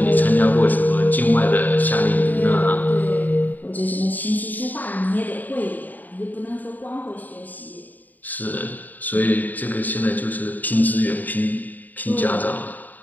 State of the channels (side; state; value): right; late; 0.085 ms